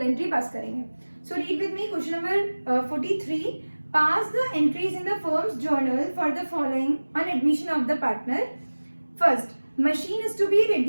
एंट्री पास करेंगे। So read with me question number 43, pass the entries in the firm's journal for the following on admission of the partner. First, machine is to be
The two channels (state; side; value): inverted; both; correlation -1.00